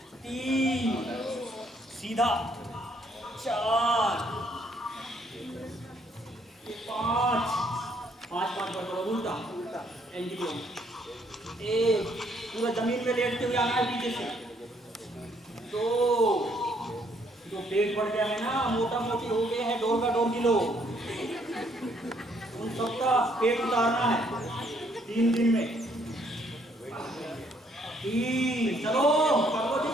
3 सीधा, 4 5 बार करो उल्टा उल्टा एंगल। 1 पूरा जमीन पे लेटते हुए आना है पीछे से। 2 जो पेट बढ़ गया है ना, मोटा मोटी हो गए हैं, डोर का 2 किलो, उन सबका पेट उतारना है 3 दिन में। 3 चलो करो जी।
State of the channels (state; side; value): normal; both; correlation 0.68